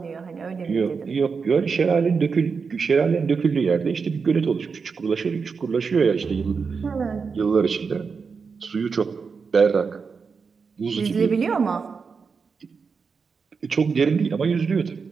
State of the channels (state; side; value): quieter; left; 5.3 dB